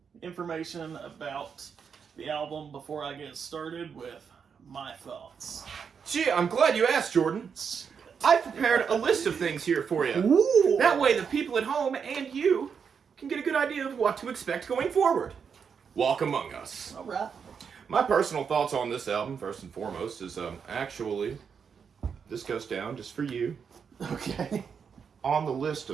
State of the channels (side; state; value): left; quieter; 6.5 dB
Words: information about the album before I get started with my thoughts? Gee, I'm glad you asked, Jordan. I prepared a list of things here for you. Ooh. That way the people at home and you can get a good idea of what to expect going forward. Walk Among Us. All right. My personal thoughts on this album, first and foremost, is actually, this goes down just for you. Okay. On the list